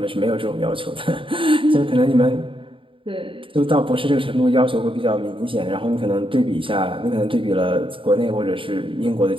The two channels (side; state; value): left; late; 0.25 ms